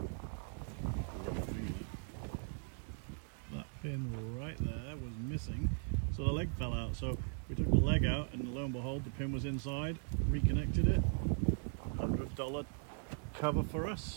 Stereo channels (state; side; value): silent; left; 52 dB below the other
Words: That pin right there was missing, so the leg fell out. So we took the leg out, and lo and behold, the pin was inside. Reconnected it. $100 cover for